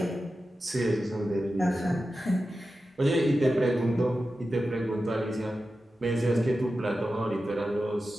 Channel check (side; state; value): both; normal; correlation 0.92